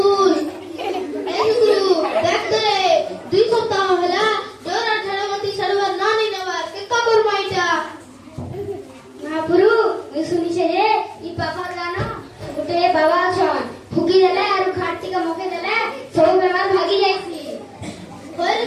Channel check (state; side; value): identical; both; correlation 1.00